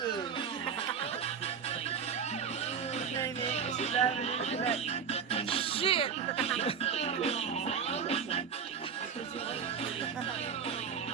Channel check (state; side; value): quieter; left; 6.8 dB